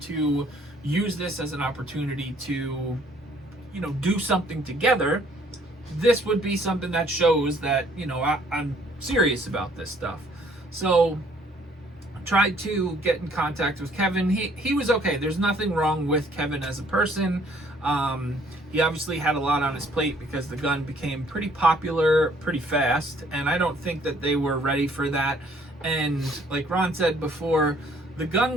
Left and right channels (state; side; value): normal; both; correlation 0.61